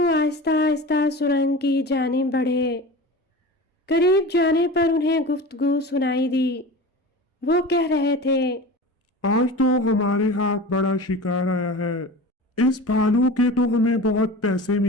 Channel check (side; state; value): both; normal; correlation 0.34